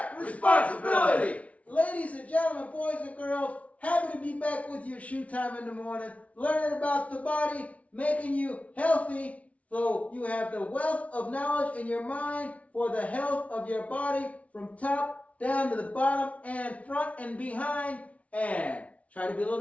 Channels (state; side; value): late; right; 0.066 ms